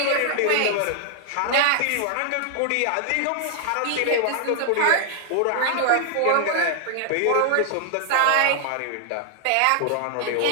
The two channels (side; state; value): both; different; correlation -0.01